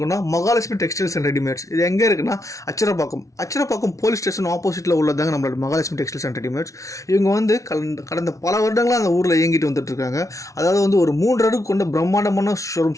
மகாலட்சுமி டெக்ஸ்டைல்ஸ் அண்ட் ரெடிமேட்ஸ். இது எங்கே இருக்குன்னா அச்சரப்பாக்கம் போலீஸ் ஸ்டேஷன் ஆப்போசிட்டில் உள்ளதாங்க நம்மளோட மகாலட்சுமி டெக்ஸ்டைல்ஸ் அண்ட் ரெடிமேட்ஸ். இவங்க வந்து கடந்த பல வருடங்களாக அந்த ஊரில் இயங்கிட்டு வந்துட்டு இருக்காங்க. அதாவது வந்து ஒரு 3 அடுக்கு கொண்ட பிரம்மாண்டமான ஷோரூம்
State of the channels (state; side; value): late; right; 0.16 ms